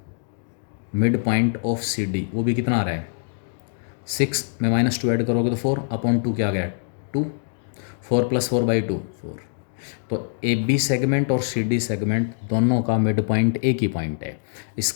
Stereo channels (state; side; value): silent; right; digital silence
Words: mid point of C D वो भी कितना आ रहा है 6 में -2 ऐड करोगे तो 4/2 क्या आ गया 2, 4 + 4/2 4. तो ए बी सेगमेंट और सी डी सेगमेंट दोनों का मिड पॉइंट एक ही पॉइंट है.